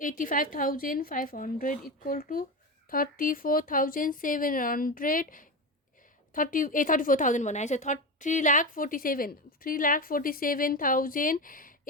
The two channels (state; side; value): normal; both; correlation 0.20